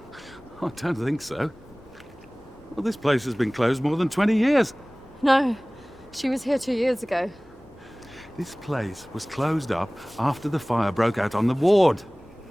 I don't think so. Well, this place has been closed more than 20 years. No, she was here 2 years ago. This place was closed up after the fire broke out on the ward.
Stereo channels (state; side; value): noise; left; rumble, 26 dB below the sound